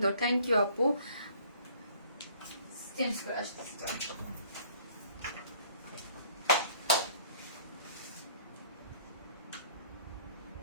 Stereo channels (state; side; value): inverted; both; correlation -0.56